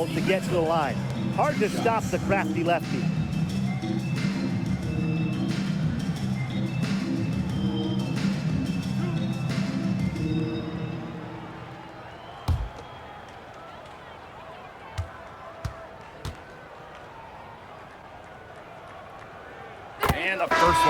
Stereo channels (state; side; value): identical; both; correlation 1.00